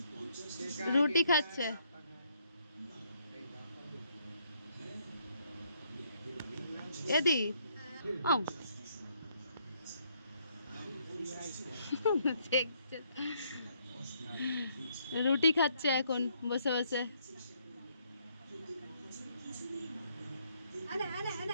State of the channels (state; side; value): inverted; both; correlation -0.71